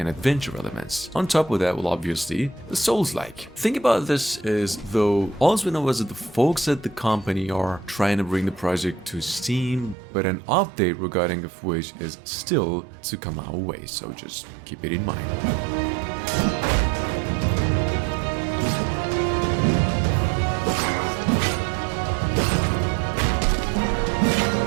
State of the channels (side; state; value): left; drops out; at 10.0 s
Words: adventure elements. On top of that, well, obviously, the Souls-like. Think about this as though all we know is that the folks at the company are trying to bring the project to Steam, but an update regarding of which is still to come our way, so just keep it in mind.